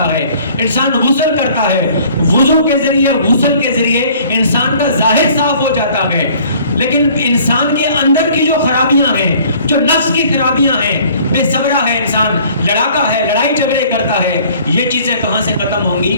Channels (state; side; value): inverted; both; correlation -0.54